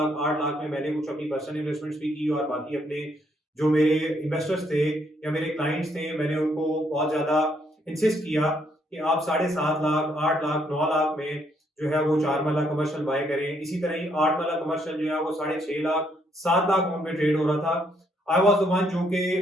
8 लाख में मैंने कुछ अपनी पर्सनल इन्वेस्टमेंट्स भी की और बाकी अपने जो मेरे इन्वेस्टर्स थे या मेरे क्लाइंट्स थे, मैंने उनको बहुत ज्यादा इंसिस्ट किया कि आप 7.5 लाख 8 लाख 9 लाख में जो है वो 4 मरला कमर्शियल बाय करें। इसी तरह ही 8 मरला कमर्शियल जो है वो 6.5 लाख 7 लाख में ट्रेड हो रहा था। आई वाज द वन जो कि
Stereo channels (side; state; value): both; normal; correlation 0.71